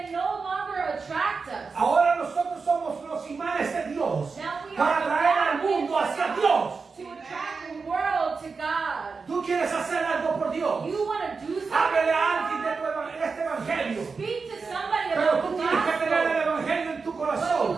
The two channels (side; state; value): left; quieter; 4.8 dB